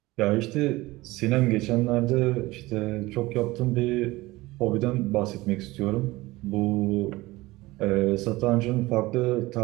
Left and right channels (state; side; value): quieter; left; 19.8 dB